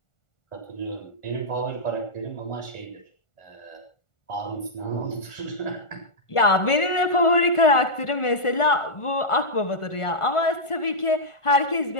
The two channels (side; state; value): right; late; 1.4 ms